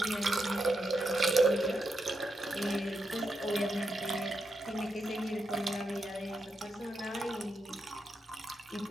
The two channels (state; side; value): normal; both; correlation 0.84